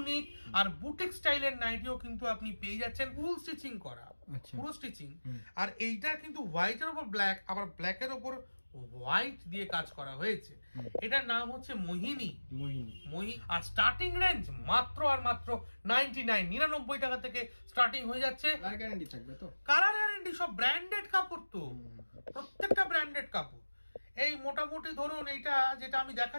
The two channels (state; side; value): inverted; both; correlation -1.00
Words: আর বুটিক স্টাইলের নাইটিও কিন্তু আপনি পেয়ে যাচ্ছেন, ফুল স্টিচিং করা, পুরো স্টিচিং। আর এইটা কিন্তু হোয়াইটের উপর ব্ল্যাক, আবার ব্ল্যাকের উপর হোয়াইট দিয়ে কাজ করা হয়েছে। এটার নাম হচ্ছে মোহিনী। আর স্টার্টিং রেঞ্জ মাত্র আর মাত্র 99 টাকা থেকে স্টার্টিং হয়ে যাচ্ছে। কালার গ্যারান্টি থাকবে তো? কালার গ্যারান্টি, সব ব্র্যান্ডেড কাপড় তো, প্রত্যেকটা ব্র্যান্ডেড কাপড়। এই মোটামুটি ধরুন এইটা যেটা আমি